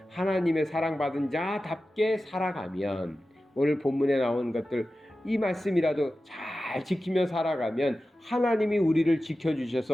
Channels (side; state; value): both; normal; correlation 0.94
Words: 하나님의 사랑받은 자답게 살아가면, 오늘 본문에 나온 것들, 이 말씀이라도 잘 지키며 살아가면 하나님이 우리를